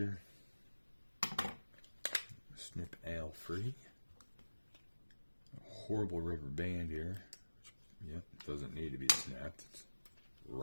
Snip Al free. A horrible rubber band here. Yep, doesn't need to be snapped. It's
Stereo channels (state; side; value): inverted; both; correlation -1.00